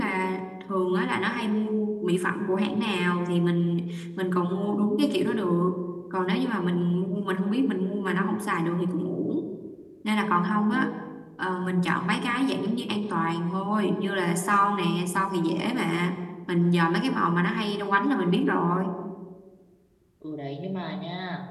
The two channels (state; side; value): identical; both; correlation 1.00